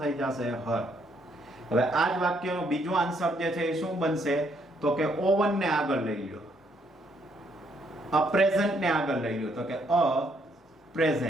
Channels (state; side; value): normal; both; correlation 0.71